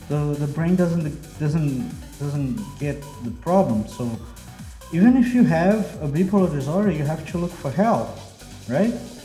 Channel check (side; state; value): both; identical; correlation 1.00